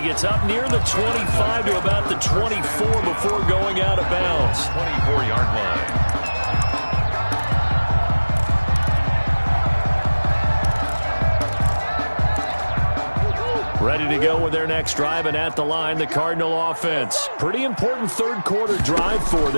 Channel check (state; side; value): inverted; both; correlation -1.00